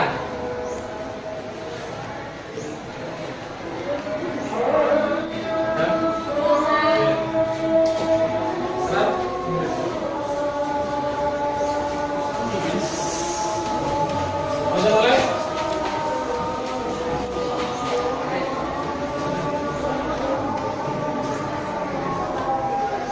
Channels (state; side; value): identical; both; correlation 1.00